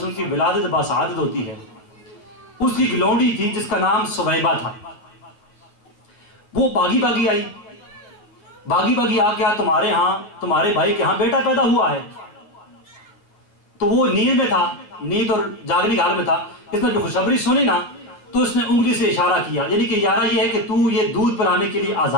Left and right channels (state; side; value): late; right; 9.6 ms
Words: کی ولادت باسعادت ہوتی ہے، اس کی ایک لونڈی تھی جس کا نام سویبہ تھا، وہ باغی آئی، باغی آ کے تمہارے ہاں، تمہارے بھائی کے ہاں بیٹا پیدا ہوا ہے، تو وہ نیند میں تھا، نیند اور جاگنے کے حال میں تھا، اس نے جو خوشخبری سنی نا تو اس نے انگلی سے اشارہ کیا، یعنی کہ یارہ یہ ہے کہ تو یہ دودھ پلانے کے لیے